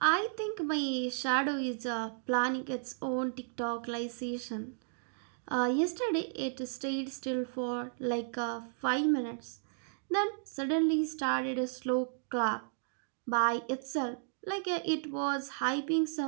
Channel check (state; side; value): silent; left; digital silence